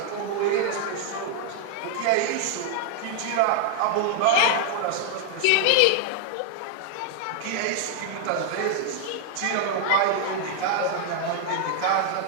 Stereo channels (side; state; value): both; different; correlation 0.00